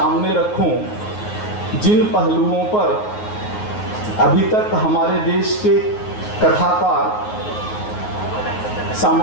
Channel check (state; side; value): late; right; 9.4 ms